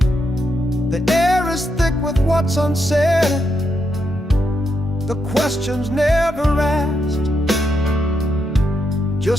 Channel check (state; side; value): normal; both; correlation 0.81